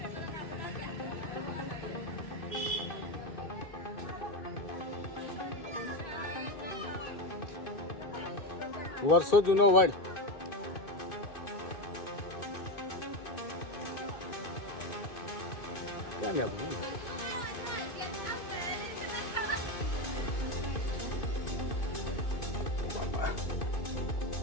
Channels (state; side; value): late; right; 2.5 ms